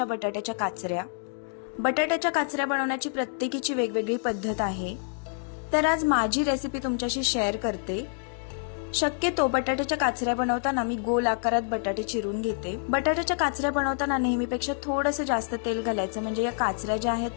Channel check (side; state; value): right; silent; digital silence